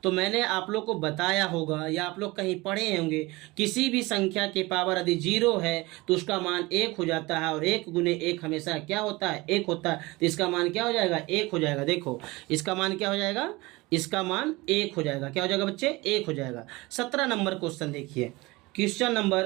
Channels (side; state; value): left; quieter; 22.2 dB